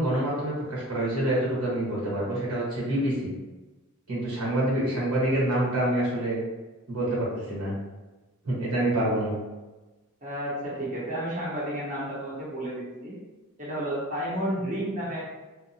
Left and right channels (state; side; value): normal; both; correlation 0.42